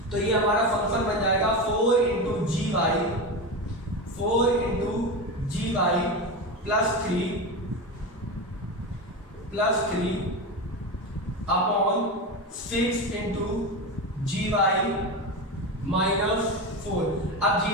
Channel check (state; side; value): normal; both; correlation 0.20